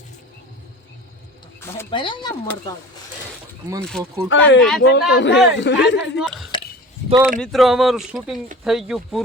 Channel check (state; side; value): normal; both; correlation 0.38